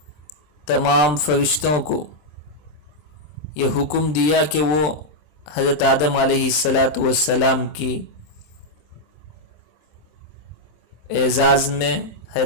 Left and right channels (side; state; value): right; late; 26 ms